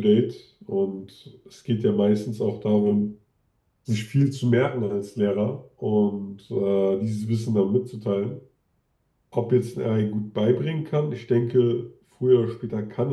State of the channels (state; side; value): identical; both; correlation 1.00